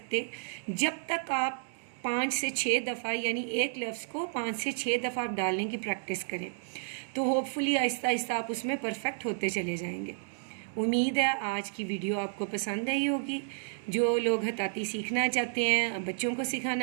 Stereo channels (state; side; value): silent; left; digital silence